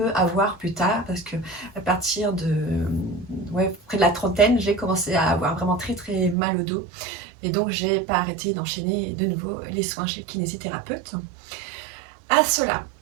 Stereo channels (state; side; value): drops out; left; at 6.4 s